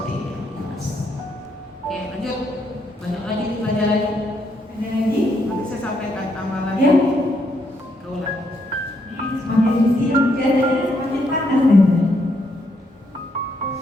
ini. Aku ikhlas. Oke, lanjut. Banyak lagi nih pelajarannya. Ada lagi? Nanti saya sampaikan amalan. Ya. Kaulah. Semakin siang keadaannya semakin panas nih.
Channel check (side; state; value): both; normal; correlation 0.75